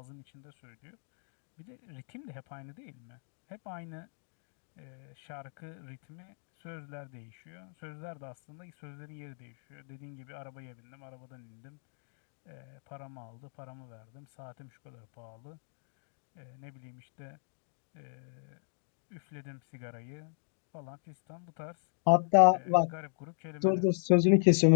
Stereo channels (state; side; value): silent; right; 54 dB below the other